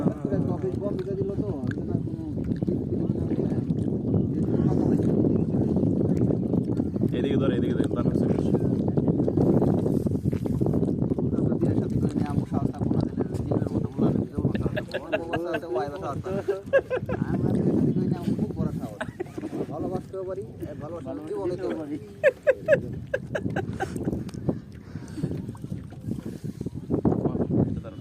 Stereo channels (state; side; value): identical; both; correlation 1.00